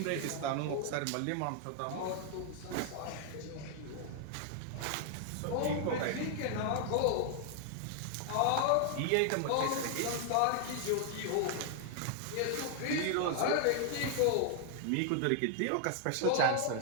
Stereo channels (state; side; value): different; both; correlation 0.00